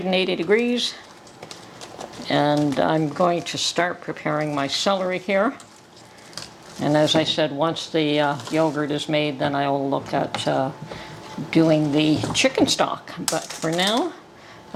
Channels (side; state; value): both; identical; correlation 1.00